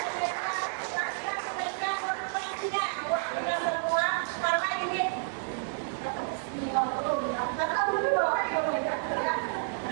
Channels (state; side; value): silent; left; digital silence